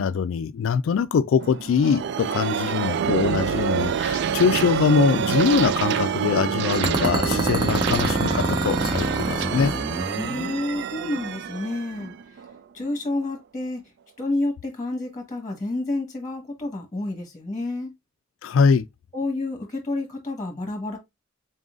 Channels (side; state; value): both; normal; correlation 0.29